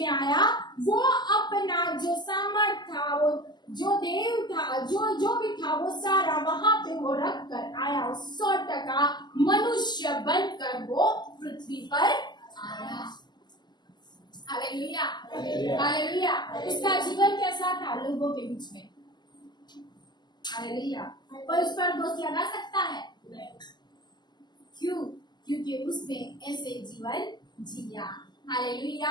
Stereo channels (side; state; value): right; late; 0.21 ms